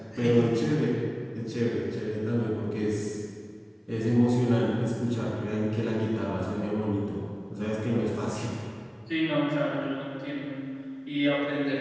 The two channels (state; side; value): identical; both; correlation 1.00